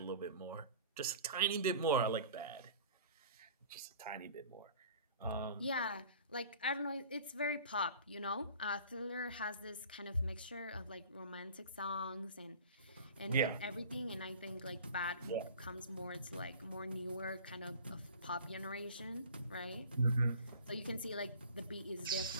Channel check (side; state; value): both; inverted; correlation -0.44